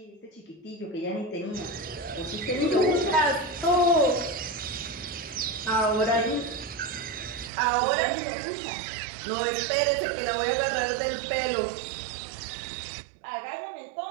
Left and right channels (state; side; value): drops out; left; at 7.5 s